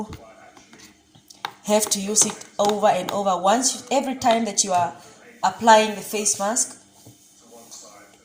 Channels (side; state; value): both; identical; correlation 1.00